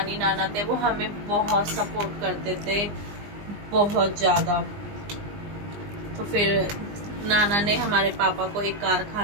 नाना थे वो हमें बहुत सपोर्ट करते थे, बहुत ज़्यादा। तो फिर नाना ने हमारे पापा को एक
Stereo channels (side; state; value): left; late; 20 ms